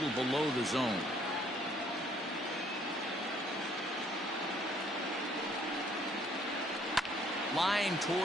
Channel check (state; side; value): normal; both; correlation 0.63